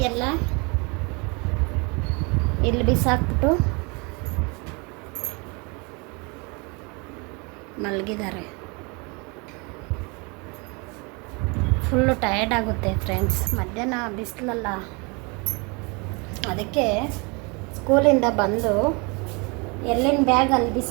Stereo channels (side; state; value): left; quieter; 30.0 dB